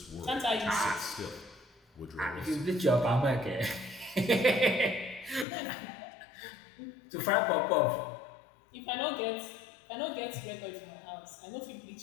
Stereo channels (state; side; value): drops out; right; at 5.5 s